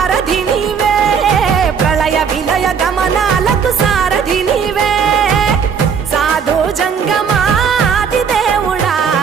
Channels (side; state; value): left; quieter; 6.7 dB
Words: నీవే ప్రళయ విలయ గమనాలకు సారథి నీవే సాధు జంగమ